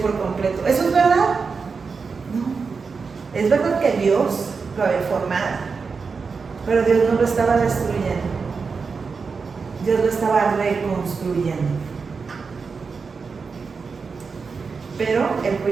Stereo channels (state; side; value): quieter; left; 5.0 dB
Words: completo. ¿Eso es verdad? No. Es verdad que Dios lo había formado, pero Dios no lo estaba destruyendo. Dios lo estaba reconstruyendo. Pero el